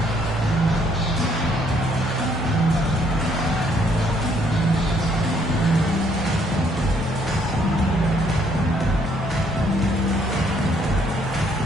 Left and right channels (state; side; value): normal; both; correlation 0.67